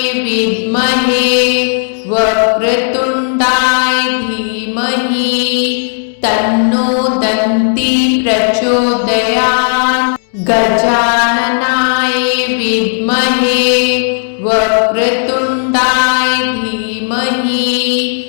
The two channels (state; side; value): silent; right; digital silence